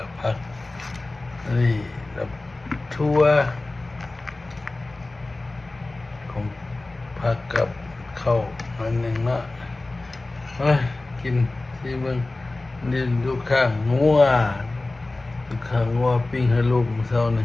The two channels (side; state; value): right; quieter; 3.0 dB